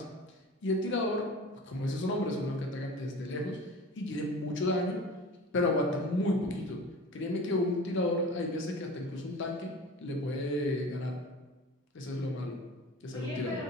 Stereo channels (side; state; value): both; normal; correlation 0.38